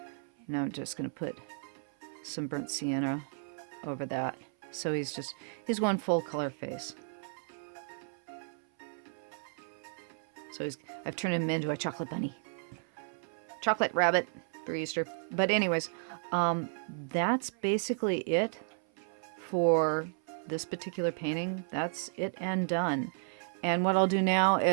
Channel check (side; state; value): left; silent; 55 dB below the other